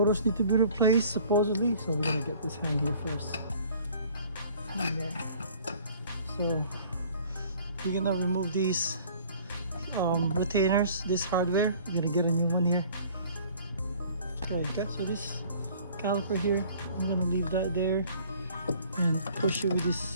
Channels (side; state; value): both; inverted; correlation -0.52